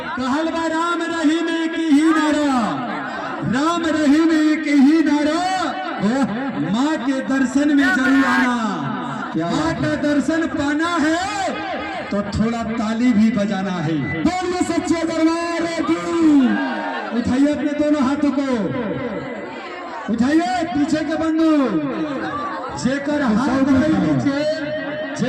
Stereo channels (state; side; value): identical; both; correlation 1.00